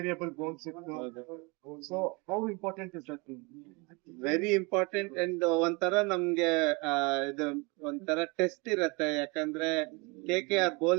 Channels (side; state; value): left; quieter; 27.8 dB